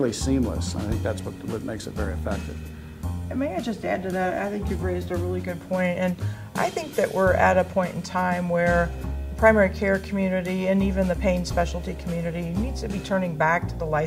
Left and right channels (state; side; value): identical; both; correlation 1.00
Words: seamless. I think that's what makes it very effective. And may I just add to that? I think you've raised a really good point, and I think that we're at a point in time where the primary care community and even the pain specialty community needs to be turning back to the